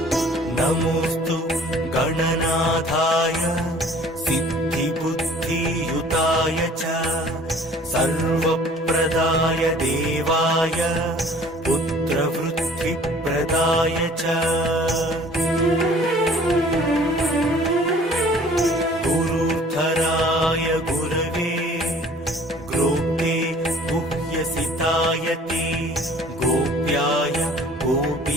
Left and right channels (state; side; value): normal; both; correlation 0.51